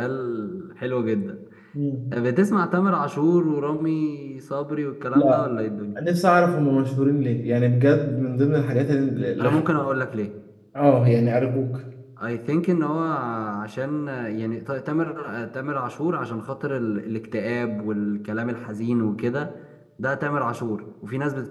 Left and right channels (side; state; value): both; identical; correlation 1.00